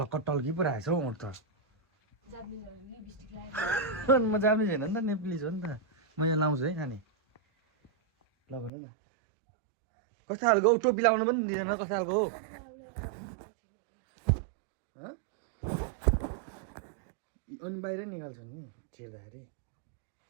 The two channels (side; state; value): left; drops out; at 8.7 s